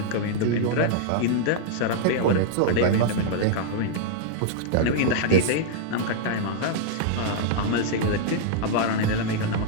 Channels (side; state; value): both; different; correlation -0.01